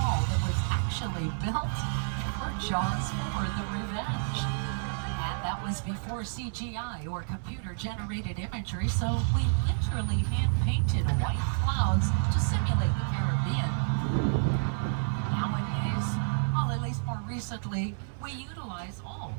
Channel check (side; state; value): left; silent; digital silence